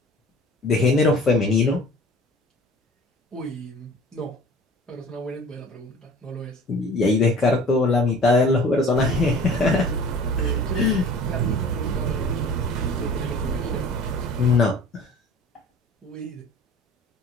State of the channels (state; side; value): normal; both; correlation 0.45